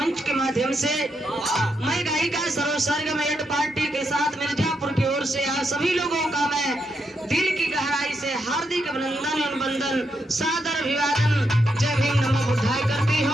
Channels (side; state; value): both; normal; correlation 0.81